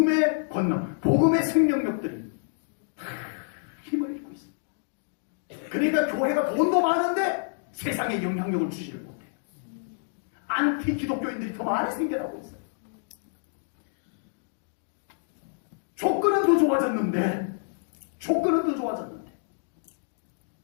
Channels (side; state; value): right; silent; digital silence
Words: 권능, 복음의 생명력들이 다 힘을 잃고 있습니다. 그러니까 교회가 돈도 많은데 세상에 영향력을 주지를 못해요. 안티 기독교인들이 더 많이 생겨나고 있어요. 조건은 더 좋아졌는데